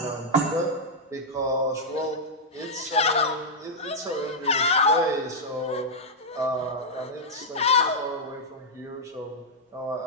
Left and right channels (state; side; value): normal; both; correlation -0.05